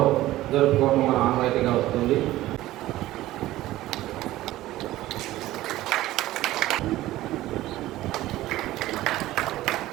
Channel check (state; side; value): quieter; left; 15.9 dB